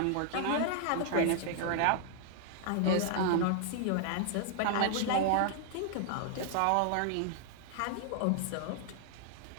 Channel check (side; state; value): both; different; correlation 0.00